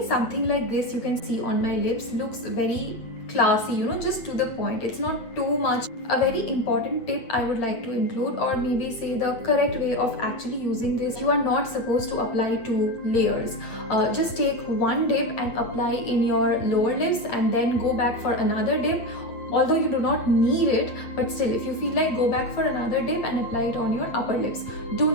something like this you can see on my lips looks very classy, just to the point. It's not too much. A very important tip I would like to include, or maybe say the correct way of actually using this: you are not supposed to apply 2 layers. Just take one dip and apply in your lower lips and then go back for another dip. Although you do not need it, but still, if you feel like, go back for another dip and apply it on your upper lips. Do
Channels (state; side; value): late; right; 8.6 ms